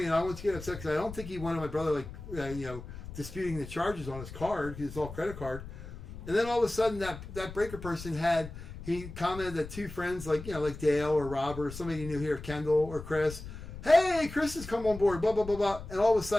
and I don't want you to get upset because I don't think he wanted my brother, disputing the charges on his card because it's all credit card. And then all of a sudden, that breaker person he commented that 2 friends, like Dale or Robert or somebody you knew here, Kendall or Chris, hey, Chris has come on board, blah, blah, blah, blah. And all of a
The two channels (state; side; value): noise; left; rumble, 12 dB below the sound